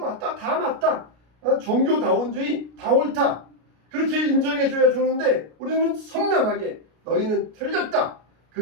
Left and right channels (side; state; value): left; late; 33 ms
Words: 다 맞다. 종교다원주의 다 옳다. 그렇게 인정해줘야 좋은데 우리는 선명하게 너희는 틀렸다. 그